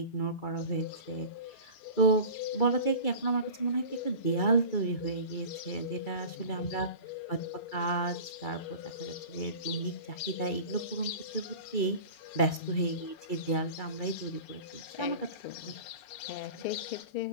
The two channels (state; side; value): late; right; 2.3 ms